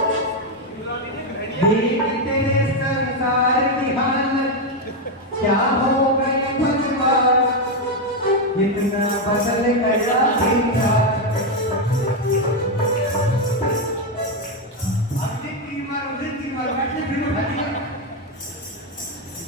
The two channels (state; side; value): normal; both; correlation 0.05